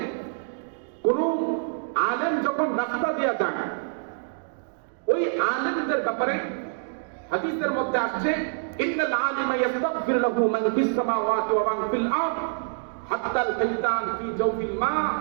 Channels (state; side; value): silent; left; digital silence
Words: কোন আলেম যখন রাস্তা দিয়া যান, ওই আলেমদের ব্যাপারে হাদিসের মধ্যে আসছে, ইন্নাল আলিমা ইস্তাগফির লাহু মান ফিস সামাওয়াতি ওয়া মান ফিল আরদ হাত্তা আল হাইতান ফি জাওফিল মা